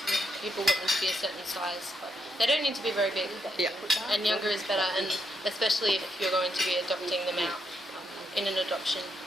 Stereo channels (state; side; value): normal; both; correlation 0.79